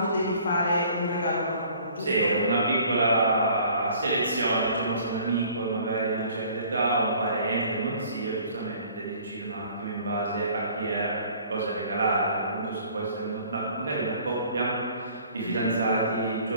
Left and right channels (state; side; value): inverted; both; correlation -0.54